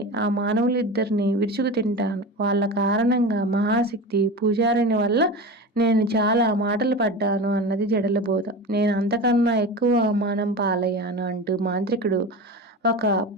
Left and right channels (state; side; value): normal; both; correlation 0.28